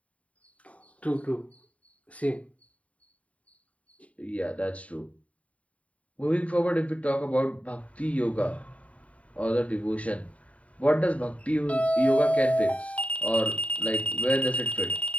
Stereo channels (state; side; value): late; right; 0.067 ms